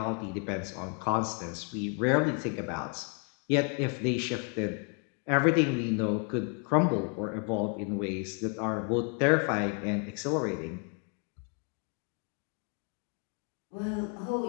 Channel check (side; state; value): right; quieter; 38.0 dB